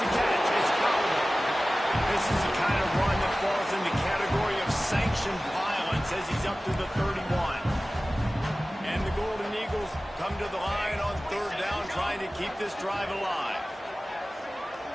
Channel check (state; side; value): normal; both; correlation 0.97